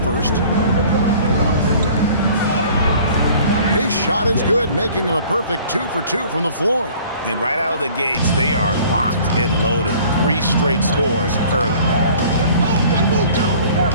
His shot is good, making him a perfect 2 for 2 from the floor. And right out of the gates, they are locked and loaded. 3 straight scores early.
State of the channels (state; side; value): inverted; both; correlation -0.50